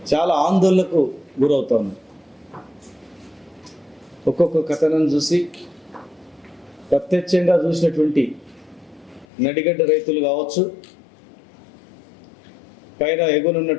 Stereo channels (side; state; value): right; drops out; at 9.2 s